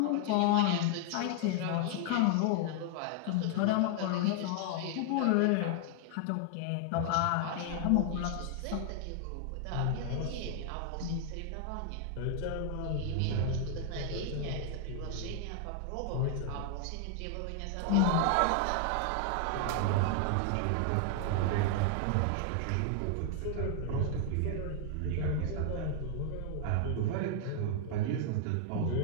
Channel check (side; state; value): both; different; correlation 0.00